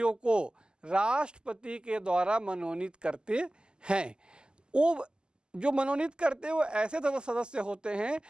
को राष्ट्रपति के द्वारा मनोनीत करते हैं। वो जो मनोनीत करते हैं वो ऐसे सदस्य होते हैं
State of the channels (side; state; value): left; late; 0.047 ms